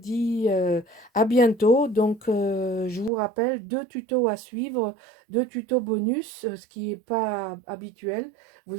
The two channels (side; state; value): left; drops out; at 3.1 s